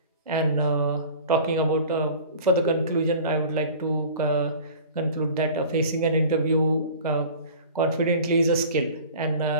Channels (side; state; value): both; inverted; correlation -0.42